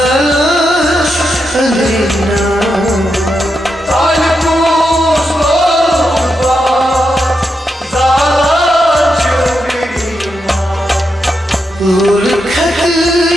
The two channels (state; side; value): normal; both; correlation 0.85